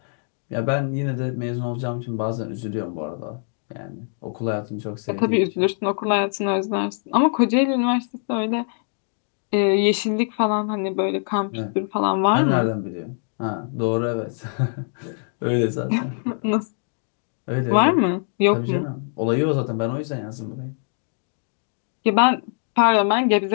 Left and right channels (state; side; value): silent; right; digital silence